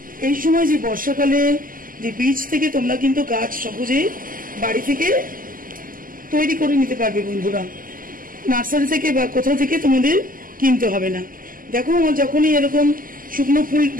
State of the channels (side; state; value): left; late; 0.41 ms